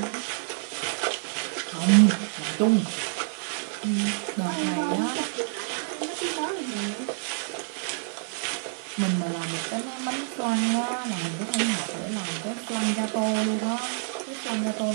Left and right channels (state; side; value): silent; left; 60 dB below the other